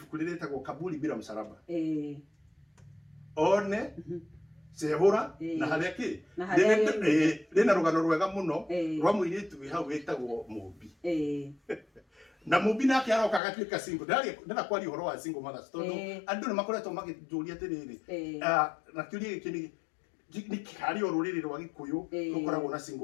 riritagwo Kaburi bila msalaba one cehura na haria ki rina rugano rwega muno rwa muiritu wi hau witagwo Mumbi na Mumbi nake aroka agatuika single ndana kwari uhoro wa single mothers tondu andu ni makoretwo magijuria atiriri na kiuria giki ni kari oruriri rwa Gikuyu rukoragwo na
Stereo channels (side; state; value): right; drops out; at 13.4 s